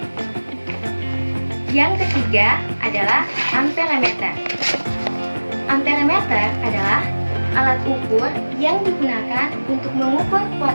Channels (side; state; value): both; inverted; correlation -1.00